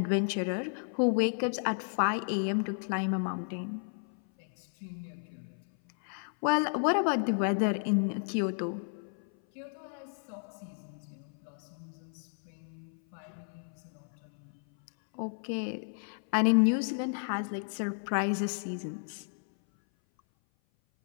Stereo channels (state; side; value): silent; right; 56 dB below the other